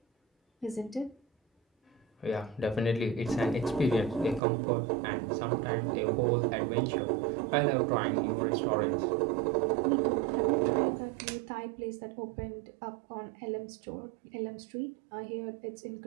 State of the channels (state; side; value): drops out; left; at 4.4 s